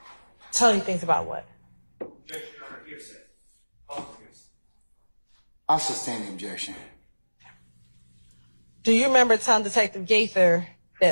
Tell you things about what? I'll sustain the objection. Do you remember telling Detective Gaither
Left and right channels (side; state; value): both; inverted; correlation -1.00